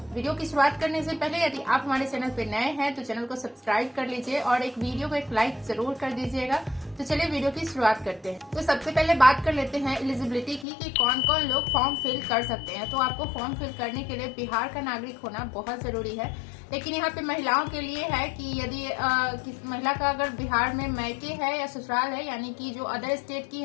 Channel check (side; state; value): right; drops out; at 10.7 s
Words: की शुरुआत करने से पहले यदि आप हमारे चैनल पे नए हैं तो चैनल को सब्सक्राइब कर लीजिए और एक वीडियो को एक लाइक जरूर कर दीजिएगा। तो चलिए वीडियो की शुरुआत करते हैं। तो सबसे पहले बात कर लेते हैं एलिजिबिलिटी की कि कौन कौन लोग फॉर्म फिल कर सकते हैं। तो आपको फॉर्म फिल करने के लिए बिहार का नागरिक होना बहुत जरूरी है, लेकिन यहाँ पे महिलाओं के लिए है कि यदि किस महिला का अगर बिहार में मैके है या ससुराल है, यानी कि जो अदर स्टेट की